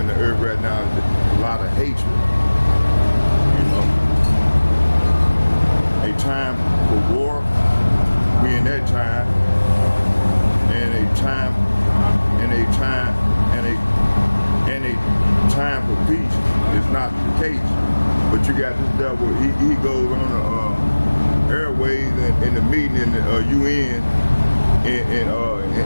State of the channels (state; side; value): inverted; both; correlation -1.00